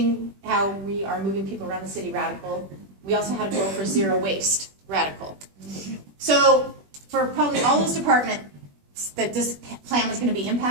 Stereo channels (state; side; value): late; left; 21 ms